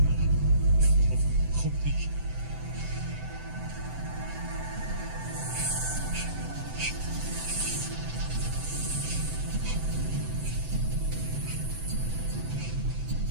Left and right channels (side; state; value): left; late; 7.8 ms